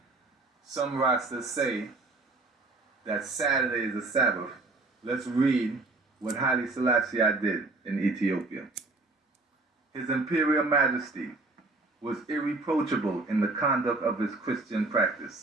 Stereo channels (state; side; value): quieter; left; 3.2 dB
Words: some Rastas say that Saturday is a Sabbath, let's read what Haile Selassie did in Ethiopia. His Imperial Majesty was irreproachable in the conduct of his Christian